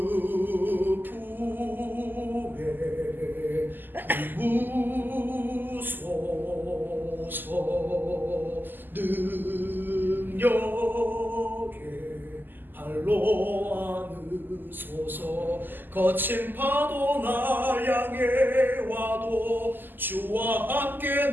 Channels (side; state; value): left; late; 0.090 ms